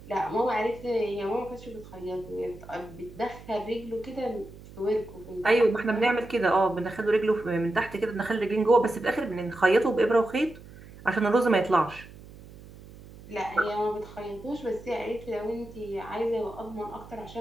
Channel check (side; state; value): right; noise; hum, 18 dB below the sound